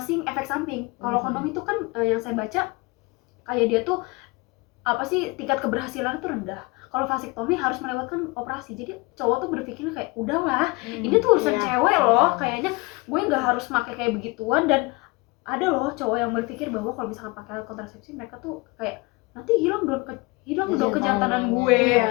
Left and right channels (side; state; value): right; quieter; 25.3 dB